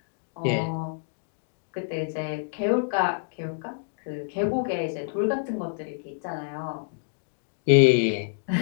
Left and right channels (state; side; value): silent; right; digital silence